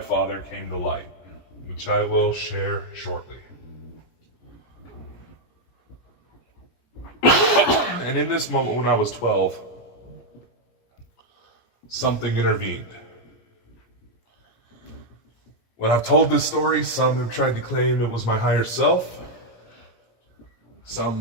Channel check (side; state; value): right; late; 17 ms